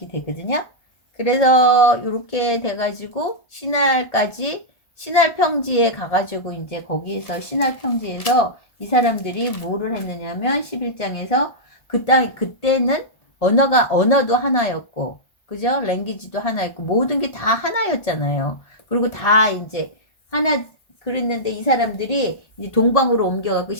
되거든요. 그래서 이렇게 돼가지고 신할 평지에 가가지고 이제 거기에서 신할 평지에서 이 사람들이 뭐를 했느냐면 11장에서 그때는 언어도 하나였고 그죠? 랭귀지도 하나였고 모든 게 다 하나였잖아요. 그리고 다 이제 하나 그랬는데 이 사람들이 이제 동방으로 옮겨갖고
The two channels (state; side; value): late; right; 1.4 ms